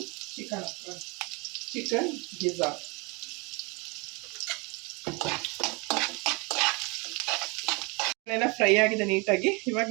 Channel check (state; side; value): quieter; left; 29.0 dB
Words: ಚಿಕನ್ ಗಿಜಾರ್ಡ್ ಫ್ರೈ ಆಗಿದೆ ನೀಟಾಗಿ. ಇವಾಗ